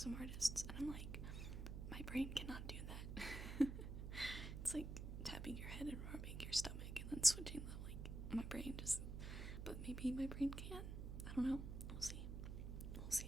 artists, and I'm like, my brain cannot do that. It's like tapping your head and rubbing your stomach and then switching them. Like, my brain just, but maybe my brain can. I don't know. We'll see. We'll see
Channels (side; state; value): right; noise; hum, 5 dB below the sound